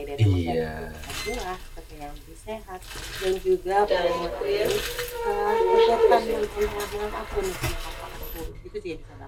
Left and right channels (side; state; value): both; identical; correlation 1.00